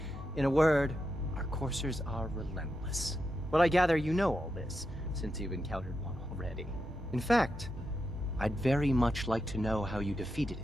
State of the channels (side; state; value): both; normal; correlation 0.86